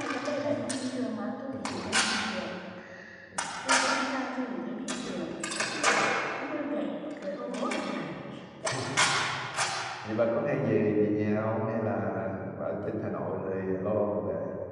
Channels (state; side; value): identical; both; correlation 1.00